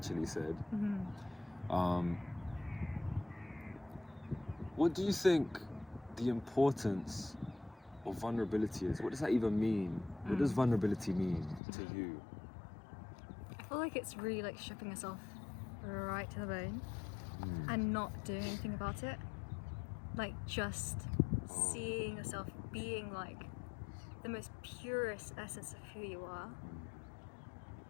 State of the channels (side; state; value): right; drops out; at 11.6 s